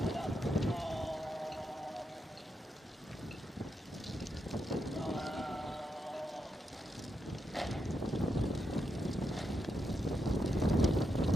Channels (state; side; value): normal; both; correlation 0.83